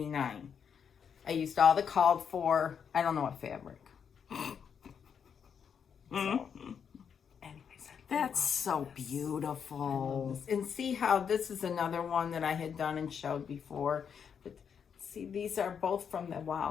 I used all the called for, I don't know what fabric. So, anyways, That's so beautiful. and see how this is another one that I had done and showed before. But see, these are both from the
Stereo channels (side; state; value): right; quieter; 7.2 dB